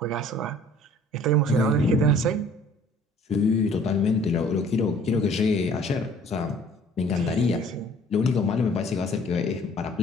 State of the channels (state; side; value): normal; both; correlation 0.54